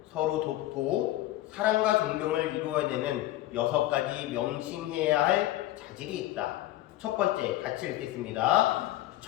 서로 돕고 사랑과 존경을 이루어내는 6가지 명심해야 할 자질이 있다. 첫 번째, 같이 읽겠습니다.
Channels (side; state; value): right; quieter; 15.4 dB